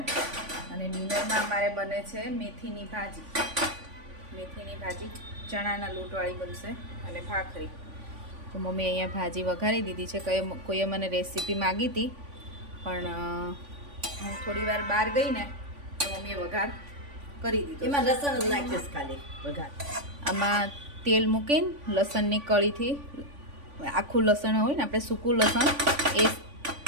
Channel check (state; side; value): late; left; 3.5 ms